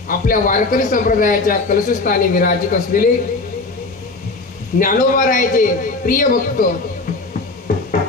आपल्या वारकरी संप्रदायाच्या कलशस्थानी विराजित असलेले ज्ञानोबारायाचे प्रिय भक्त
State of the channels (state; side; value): quieter; right; 3.5 dB